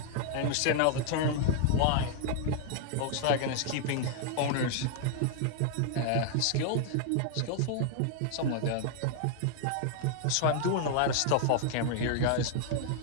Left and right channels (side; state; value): both; different; correlation 0.00